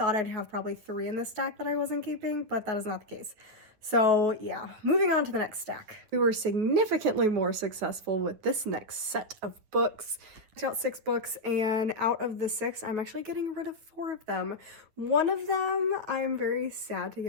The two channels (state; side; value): late; left; 9.5 ms